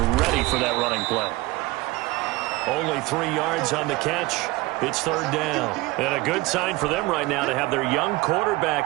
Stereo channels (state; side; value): quieter; left; 21.2 dB